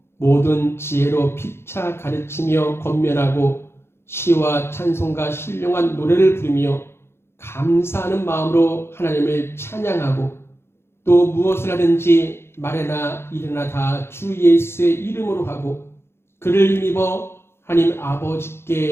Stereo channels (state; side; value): late; right; 0.12 ms